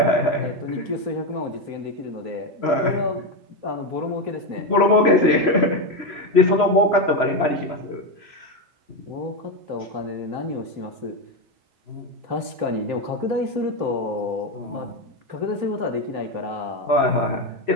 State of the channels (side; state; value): left; late; 3.2 ms